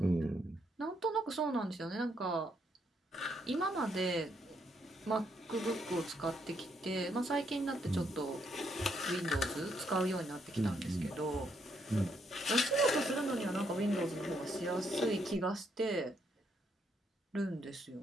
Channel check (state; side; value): normal; both; correlation 0.75